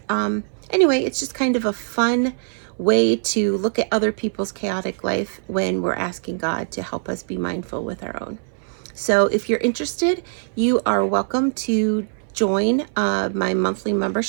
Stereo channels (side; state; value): left; silent; 61 dB below the other